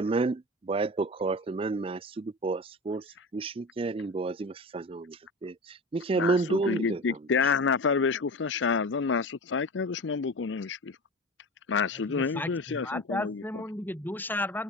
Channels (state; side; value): normal; both; correlation 0.30